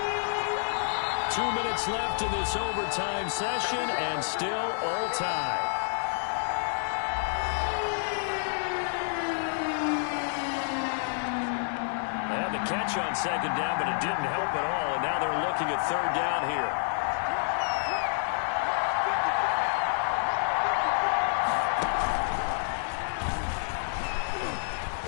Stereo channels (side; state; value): right; silent; digital silence